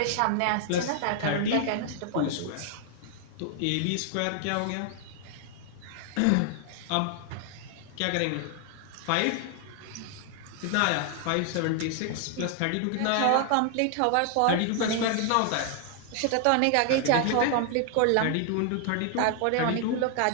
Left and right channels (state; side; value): different; both; correlation 0.00